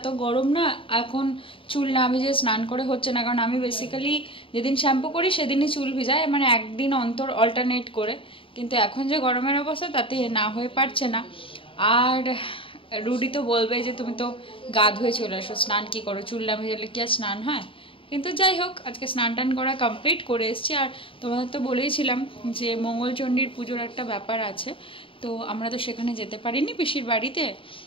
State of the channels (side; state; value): right; late; 0.26 ms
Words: গরম না, এখন চুল না ভিজে স্নান করে হচ্ছে না, কারণ আমি বেসিক্যালি যেদিন শ্যাম্পু করি সেদিনই চুল ভিজাই, মানে একদিন অন্তর অল্টারনেট করে। কিন্তু এখন যে গরমের অবস্থা তাতে না হয়ে পারছে না। আর রুডি তো বলবে যে তুমি তো গা ধুয়ে চলে আসো, স্নান কি করো, চুল না ভিজালে কি আর স্নান হয়? কিন্তু যাই হোক, আজকে স্নান টান করা কমপ্লিট করে এসেছি। আর তোমাদের তো বলেইছিলাম যে মঙ্গলচণ্ডীর পুজোর একটা ব্যাপার আছে, তো আমরা তো সেখানে যেতে পারিনি পিসির বাড়িতে।